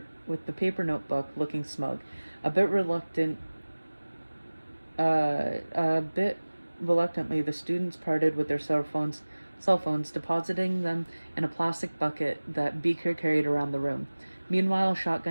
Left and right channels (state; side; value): inverted; both; correlation -1.00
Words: paper notebook, looking smug, a bit reluctantly. The students parted with their cell phones, depositing them in a plastic bucket that Beaker carried around the room. Meanwhile,